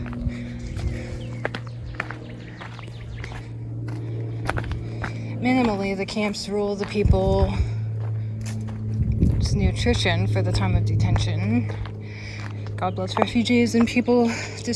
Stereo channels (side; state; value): both; identical; correlation 1.00